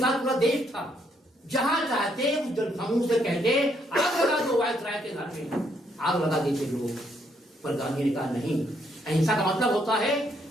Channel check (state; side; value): normal; both; correlation 0.72